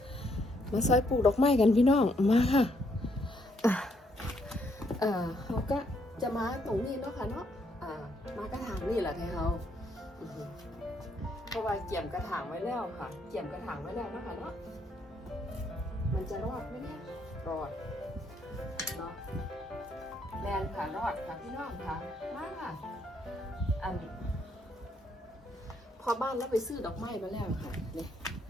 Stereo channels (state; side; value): normal; both; correlation 0.72